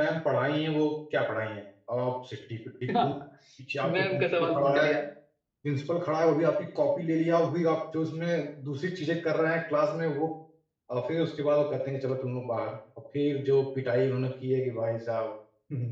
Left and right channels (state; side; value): identical; both; correlation 1.00